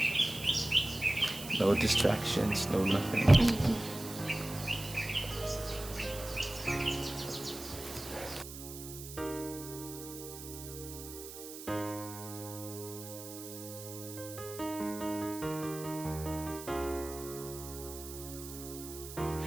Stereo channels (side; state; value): right; noise; hiss, 12 dB below the sound